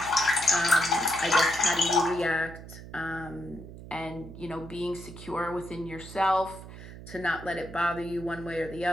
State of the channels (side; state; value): right; noise; hum, 14 dB below the sound